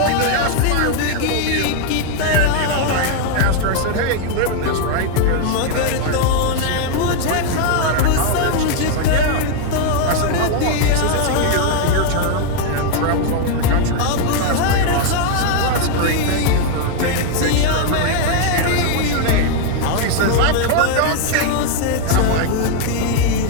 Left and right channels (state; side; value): different; both; correlation 0.01